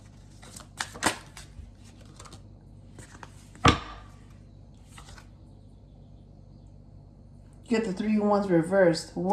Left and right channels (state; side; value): identical; both; correlation 1.00